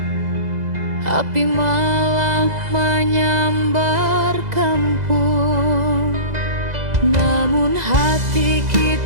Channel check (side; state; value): left; late; 2.0 ms